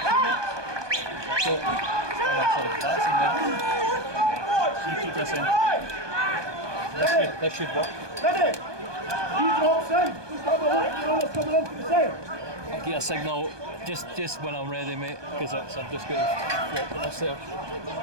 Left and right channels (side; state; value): left; late; 1.2 ms